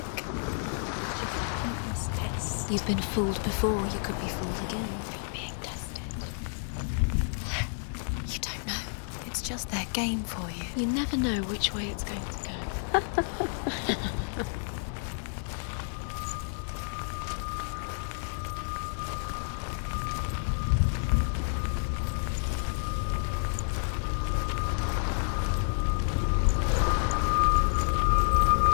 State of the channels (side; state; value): right; silent; digital silence